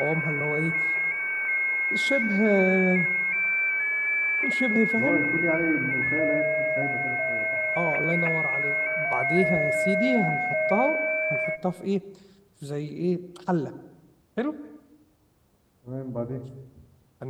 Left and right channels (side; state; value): both; identical; correlation 1.00